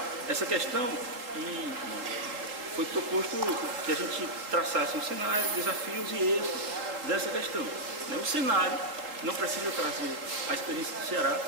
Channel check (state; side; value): late; left; 3.8 ms